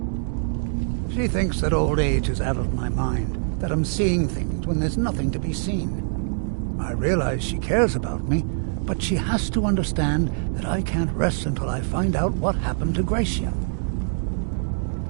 She thinks that old age has addled my mind, that I'm seeing things when there's nothing to be seen. I realize she cares about me, but she has to understand that I can't rest until I find out what happened to Gracia.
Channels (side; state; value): left; silent; digital silence